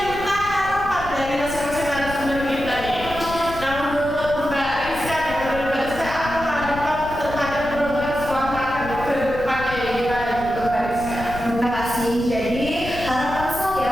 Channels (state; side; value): noise; left; rumble, 11 dB below the sound